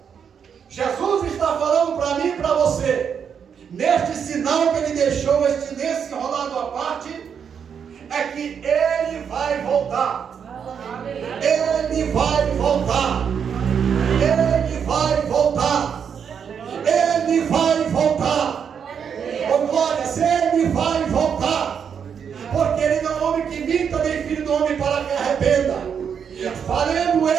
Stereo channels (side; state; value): left; quieter; 7.3 dB